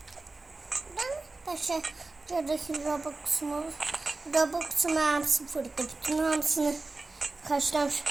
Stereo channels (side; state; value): left; quieter; 3.4 dB